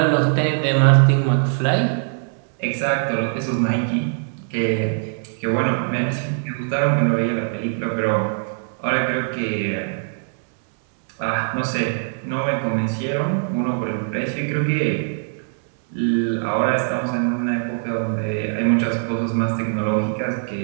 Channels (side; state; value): left; silent; digital silence